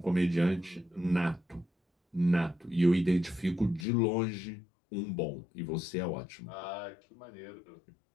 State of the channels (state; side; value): drops out; right; at 3.9 s